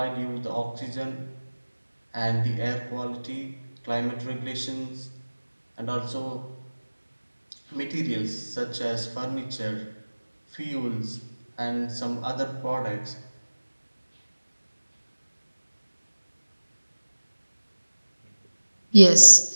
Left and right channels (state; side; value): inverted; both; correlation -1.00